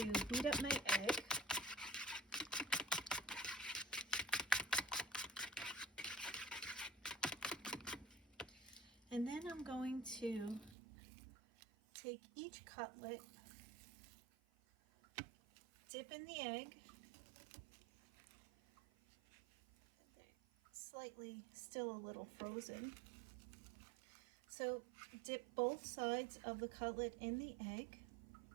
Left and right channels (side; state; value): left; drops out; at 10.8 s